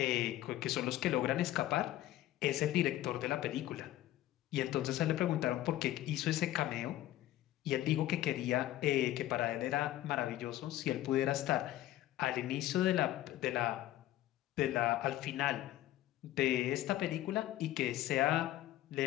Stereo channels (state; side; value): quieter; right; 14.3 dB